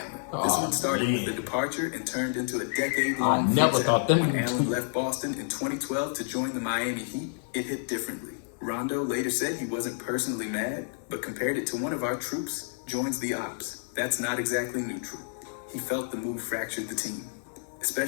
This one started with a departure and turned into a decade-long I never thought them. When Allen left Boston in 2012 to join the Miami Heat, it hit differently. Rondo later said he wasn't personally mad, but compared it to one of our troops joins the ops. That's not exactly neutral. He felt the move fractured the team,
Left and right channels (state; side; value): silent; right; 56 dB below the other